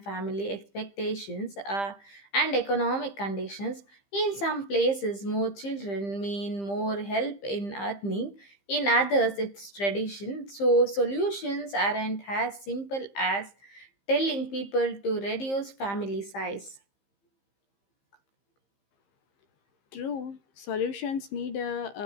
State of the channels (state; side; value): late; right; 15 ms